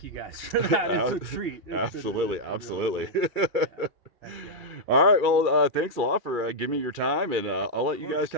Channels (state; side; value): late; left; 2.3 ms